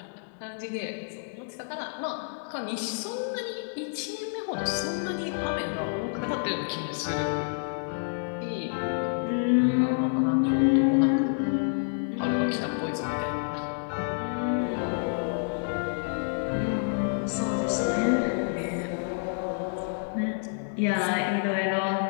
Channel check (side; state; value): right; silent; digital silence